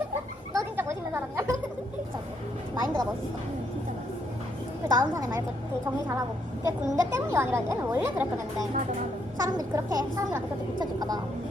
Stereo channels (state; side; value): normal; both; correlation 0.74